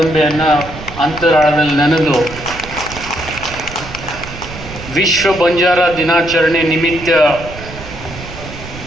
ಅಂತರಾಳದಲ್ಲಿ ನೆನೆದು ವಿಶ್ವ ಬಂಜಾರ ದಿನಾಚರಣೆ ನಿಮಿತ್ತ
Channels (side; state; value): right; noise; rumble, 13 dB below the sound